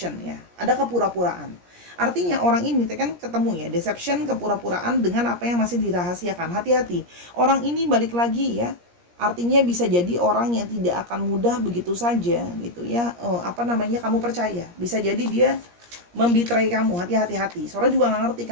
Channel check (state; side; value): late; left; 17 ms